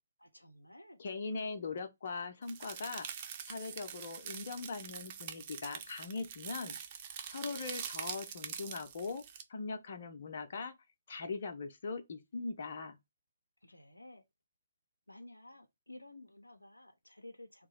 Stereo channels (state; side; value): inverted; both; correlation -0.71